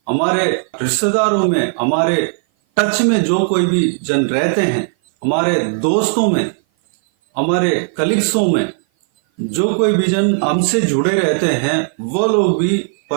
हमारे रिश्तेदारों में, हमारे टच में जो कोई भी जन रहते हैं, हमारे दोस्तों में, हमारे कलीग्सों में जो कोई भी जन हमसे जुड़े रहते हैं, वो लोग भी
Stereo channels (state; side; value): silent; left; 57 dB below the other